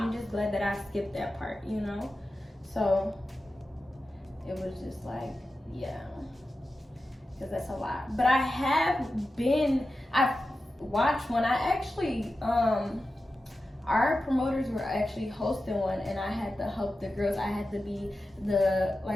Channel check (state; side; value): normal; both; correlation 0.93